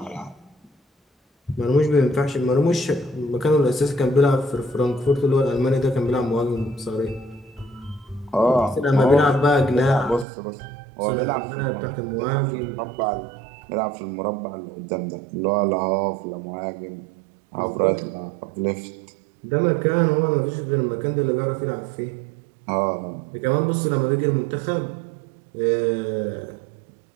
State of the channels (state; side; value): drops out; left; at 10.2 s